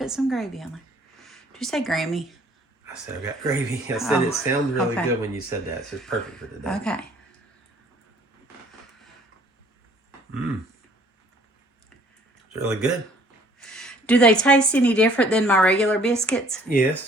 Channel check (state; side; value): normal; both; correlation 0.57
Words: some gravy on there. Did you say Grammy? I said I got gravy. I said it sounds really okay. good when you said that. So it's perfect for today. Okay. It's really good. Do they taste any different than my regular biscuits?